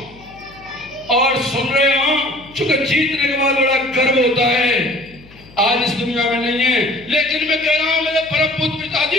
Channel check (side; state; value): left; noise; hum, 24 dB below the sound